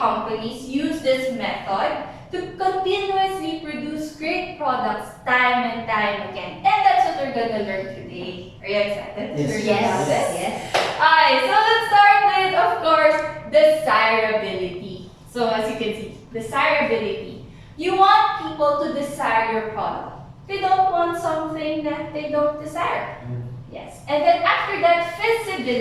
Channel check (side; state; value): both; identical; correlation 1.00